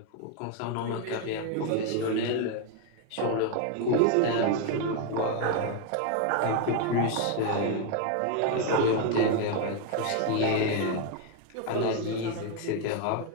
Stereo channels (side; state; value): both; different; correlation 0.00